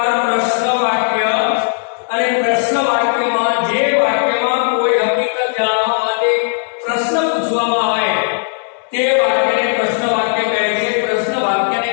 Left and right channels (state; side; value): silent; right; digital silence